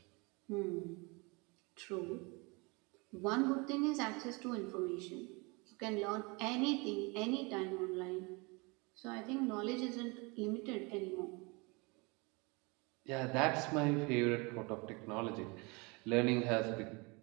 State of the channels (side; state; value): left; quieter; 28.4 dB